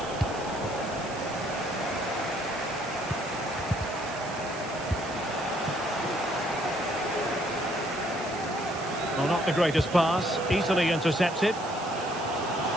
Well, not the greatest pass, easily intercepted.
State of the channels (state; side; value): noise; right; hiss, 16 dB below the sound